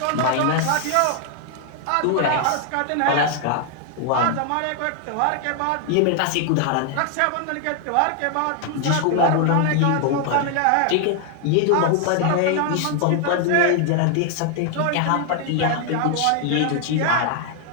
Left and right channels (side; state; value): both; different; correlation 0.00